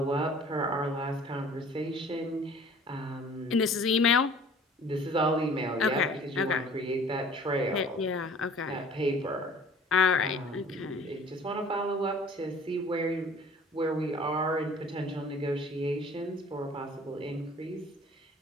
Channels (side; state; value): both; normal; correlation 0.49